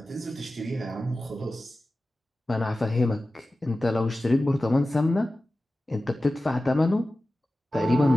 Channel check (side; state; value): both; normal; correlation 0.95